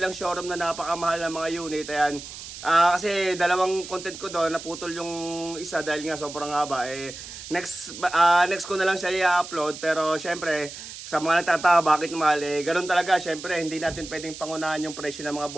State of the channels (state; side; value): noise; right; hiss, 12 dB below the sound